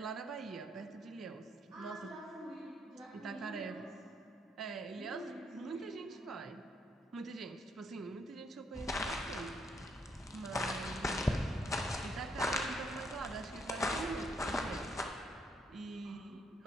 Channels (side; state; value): both; normal; correlation 0.73